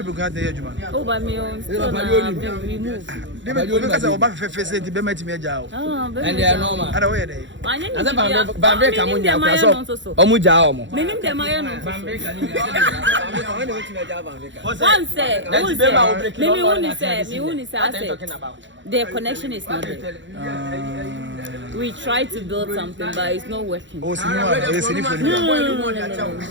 be glad to hear you. Oh, by me, remove. Because I back for face to be met me a job. And they are normal. I don't wear Bambe Kamunya, Omuja, meaning the Mayan. One say, their connection is not there. We try to build something, but it's not working. Oh,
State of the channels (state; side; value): late; left; 0.54 ms